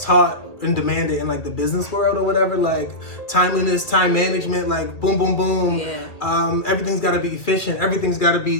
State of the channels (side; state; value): right; late; 2.5 ms